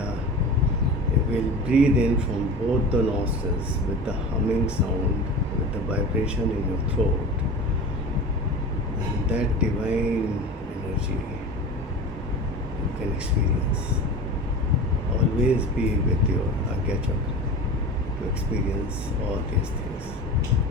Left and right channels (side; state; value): both; normal; correlation 0.32